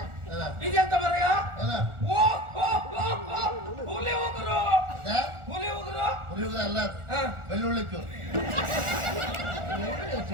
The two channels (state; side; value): late; left; 1.4 ms